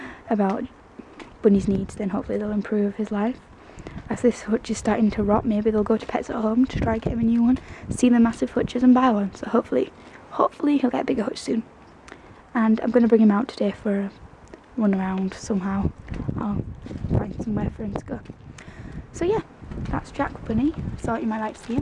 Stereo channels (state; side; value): identical; both; correlation 1.00